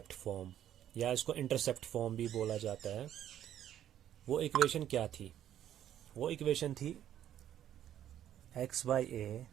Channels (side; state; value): left; quieter; 11.0 dB